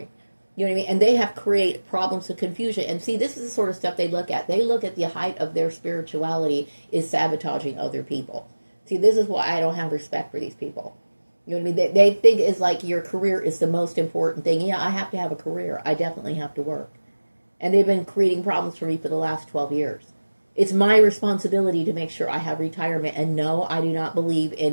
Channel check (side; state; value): both; inverted; correlation -1.00